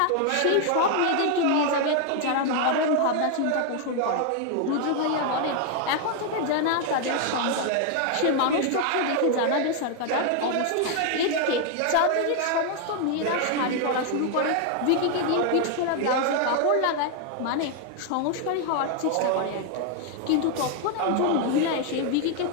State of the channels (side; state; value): both; different; correlation 0.00